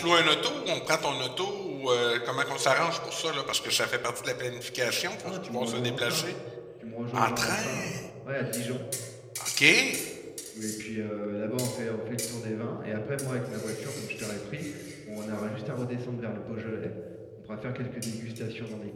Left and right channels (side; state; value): both; identical; correlation 1.00